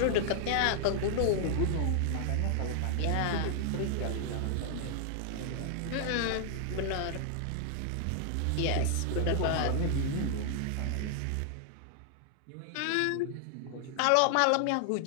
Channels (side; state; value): both; different; correlation 0.00